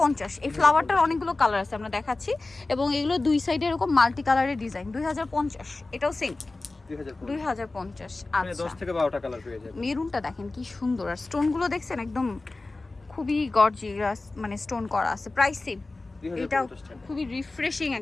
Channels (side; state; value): right; quieter; 3.3 dB